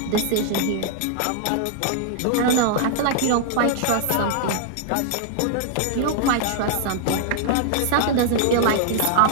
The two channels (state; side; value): different; both; correlation -0.01